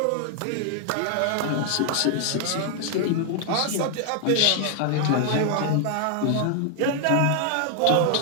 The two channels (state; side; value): different; both; correlation 0.00